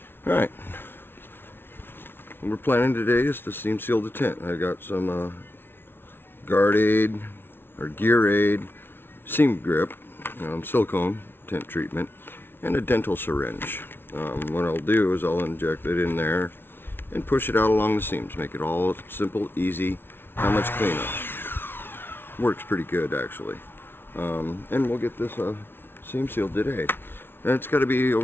All right. What we're planning today is to seam seal the tent. I got some guard aid or gear aid, seam grip, silicone tent treatment, and a dental syringe. What I'll do is I'll inject it in there and push it out along the seams. Make it all simple, easy, not much cleanup. Works pretty good actually. And we'll get this seam sealed today. And it's got to be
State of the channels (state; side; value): late; right; 0.11 ms